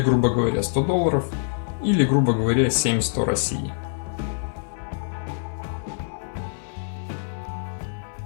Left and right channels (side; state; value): right; silent; 62 dB below the other